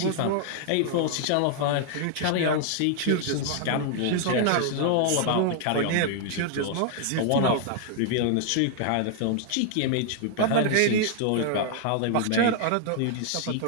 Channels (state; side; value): different; both; correlation 0.00